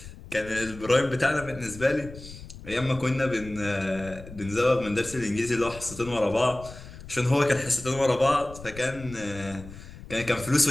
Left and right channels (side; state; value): left; noise; rumble, 15 dB below the sound